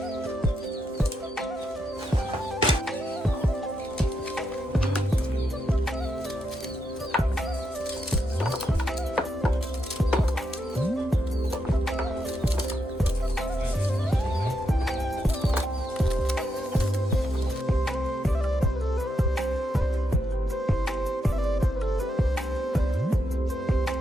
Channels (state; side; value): normal; both; correlation 0.82